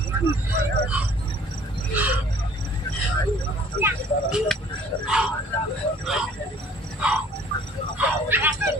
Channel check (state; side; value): normal; both; correlation 0.54